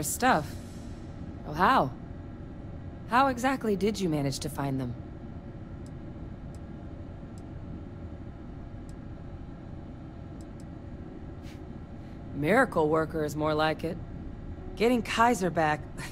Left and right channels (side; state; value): both; identical; correlation 1.00